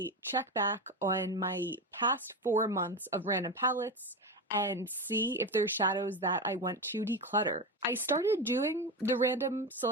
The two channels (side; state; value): both; normal; correlation 0.19